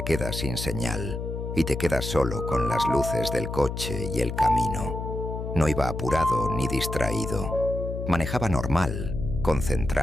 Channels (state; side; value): noise; left; hum, 5 dB below the sound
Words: queda sin señal y te quedas solo con las luces del coche y el camino. No iba apurado ni distraído. Manejaba normal,